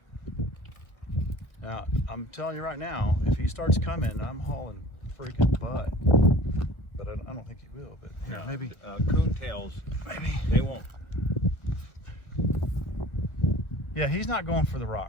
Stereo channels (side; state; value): right; late; 1.2 ms